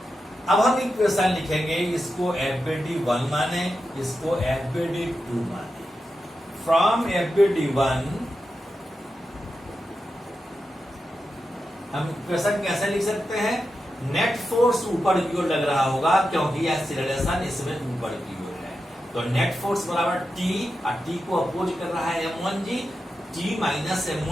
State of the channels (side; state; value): both; normal; correlation 0.89